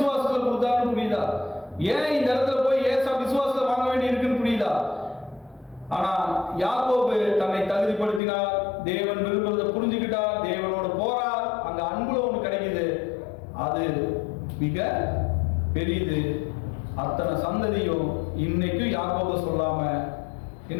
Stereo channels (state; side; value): drops out; right; at 8.2 s